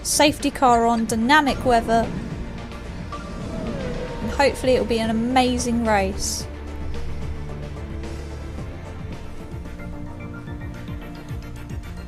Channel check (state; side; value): identical; both; correlation 1.00